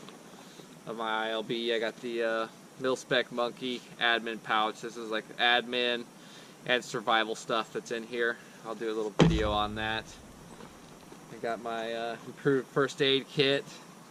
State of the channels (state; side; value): identical; both; correlation 1.00